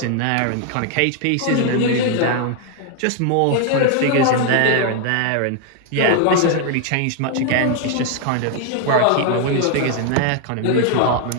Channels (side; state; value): both; different; correlation 0.00